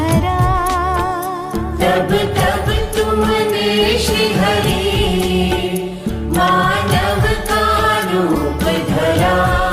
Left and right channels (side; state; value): both; identical; correlation 1.00